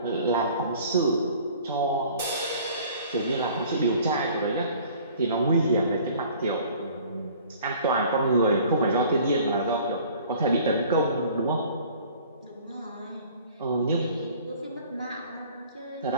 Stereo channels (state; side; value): inverted; both; correlation -0.51